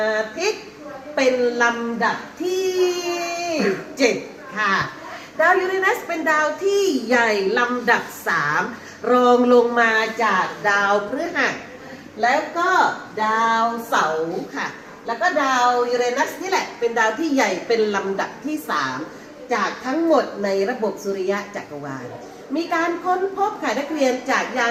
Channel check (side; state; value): both; identical; correlation 1.00